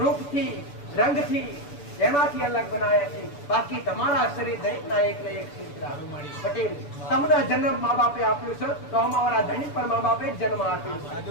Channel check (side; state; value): right; late; 6.9 ms